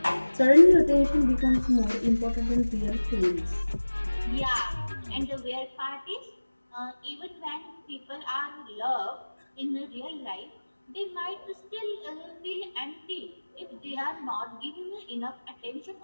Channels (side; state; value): both; inverted; correlation -1.00